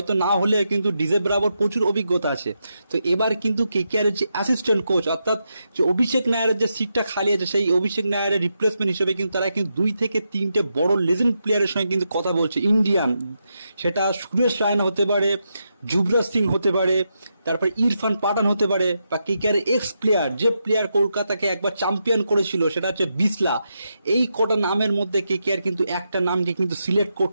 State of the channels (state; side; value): inverted; both; correlation -0.85